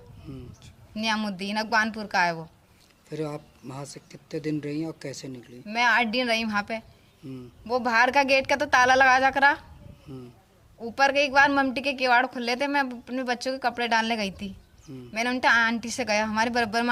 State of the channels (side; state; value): both; identical; correlation 1.00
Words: नियामुद्दीन, अगवानपुर का है वो। फिर आप वहाँ से कितने दिन रही और कैसे निकली? मैं 8 दिन रही वहाँ पे। वो बाहर का गेट का तो ताला लगा जा करा, ऊपर के एक बार ममटी के किवाड़ खुले थे। मैं अपने बच्चों के कपड़े डालने गई थी। मैंने उनके आंटी से गया, हमारे बराबर